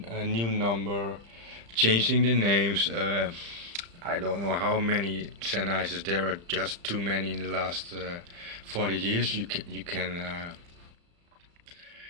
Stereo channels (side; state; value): left; late; 35 ms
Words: new number, changing the names. I don't know how many Sennheisers there are, just too many in the last 40 years. You can